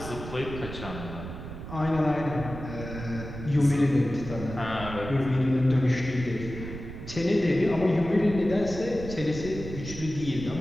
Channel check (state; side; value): noise; right; rumble, 10 dB below the sound